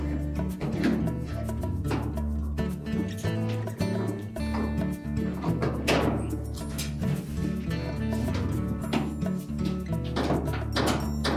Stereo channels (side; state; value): both; identical; correlation 1.00